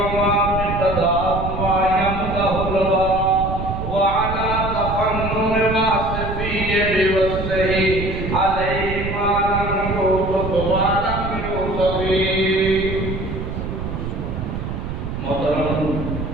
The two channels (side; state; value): right; noise; rumble, 6 dB below the sound